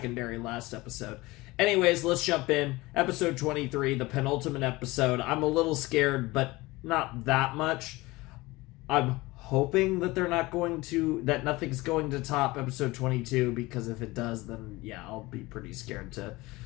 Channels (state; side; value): quieter; right; 21.1 dB